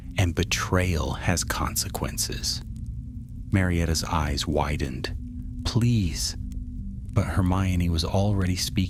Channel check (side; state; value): both; identical; correlation 1.00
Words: "And betrayal has consequences." Marietta's eyes widened. "Please." But Hermione was already